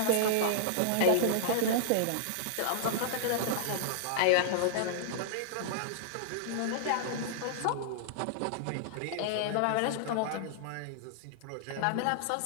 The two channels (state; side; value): different; both; correlation -0.01